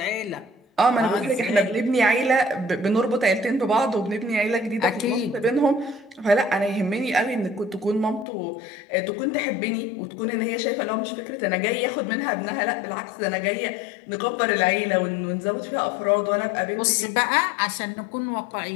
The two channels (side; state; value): right; drops out; at 8.2 s